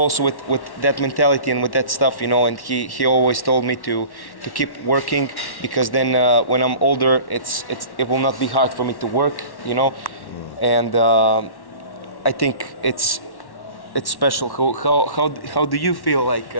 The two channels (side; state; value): right; late; 1.1 ms